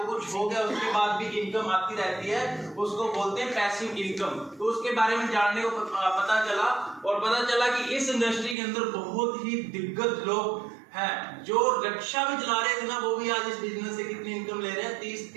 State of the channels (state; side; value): drops out; left; at 8.6 s